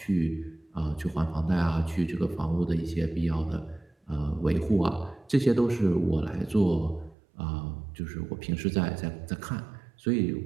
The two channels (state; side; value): drops out; left; at 7.2 s